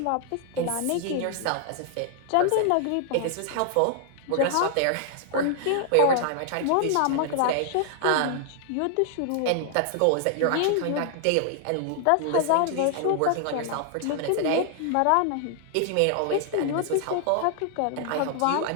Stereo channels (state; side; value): different; both; correlation 0.00